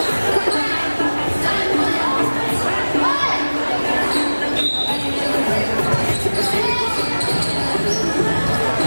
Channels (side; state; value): both; inverted; correlation -1.00